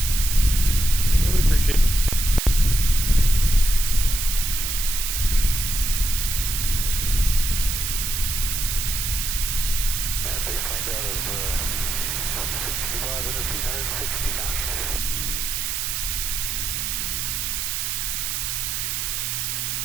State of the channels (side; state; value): right; noise; hiss, 1 dB below the sound